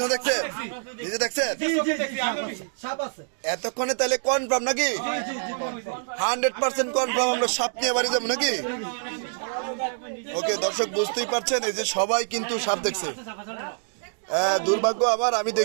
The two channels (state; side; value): silent; left; digital silence